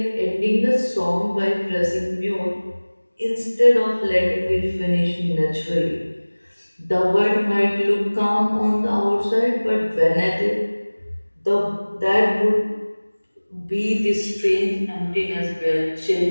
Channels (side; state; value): both; inverted; correlation -1.00